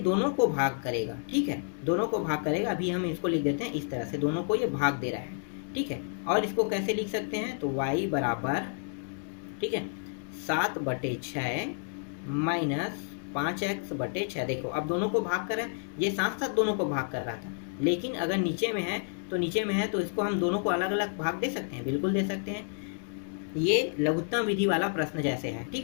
को भाग करेगा, ठीक है, दोनों को भाग करेगा। अभी हम इसको लिख देते हैं इस तरह से, दोनों को ये भाग दे रहा है। ठीक है, और इसको कैसे लिख सकते हैं, तो y बराबर, ठीक है, 7/6 माइनस 5x/6। देखो अब दोनों को भाग कर रहा है, ये साथ साथ दोनों को भाग कर रहा था, लेकिन अगर नीचे में है तो इसको हम दोनों को अलग अलग भाग दे सकते हैं, बिल्कुल दे सकते हैं। ये लघुत्तम विधि वाला प्रश्न जैसे है।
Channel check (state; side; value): silent; right; digital silence